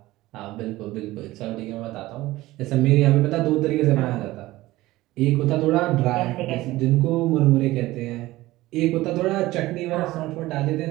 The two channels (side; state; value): left; quieter; 17.8 dB